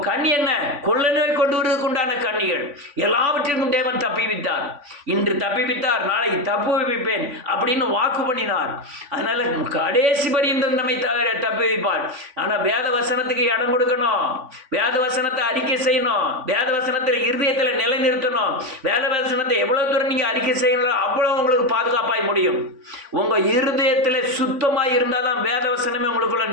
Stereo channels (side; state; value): left; late; 3.5 ms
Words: கண்ணி என்ன? கொள்ள நோய் கொண்டு வருவதற்கு உண்டான கன்னிகள். எல்லாவற்றிற்கும் தேவன் தப்பிவித்தார். இன்று தப்பிவித்தார், நாளைக்கு தப்பு வைப்பேன் அப்படின்னு வாக்கு பண்ணினார். அதனால கடைசி பரியந்தம் நம்மை தப்பி வைப்பார். ஆனால் வேத வசனத்துக்கு இடம் கொடுக்கணும், வேத வசனத்தை அறிக்கை செய்யணும், வேத வசனத்தில் இருதயத்தில் நிலைநிறுத்தணும். வேத வசனத்தை எவ்வளவு தூரம் நீங்கள் அறிக்கை செய்யணும், அவ்வளோ உங்களுக்கு பாதுகாப்பாய் முடியும். உங்கள் இருதயத்தில் சுத்தமாக இருந்தால் தான் வேத வசனமே உங்களுக்குள்ள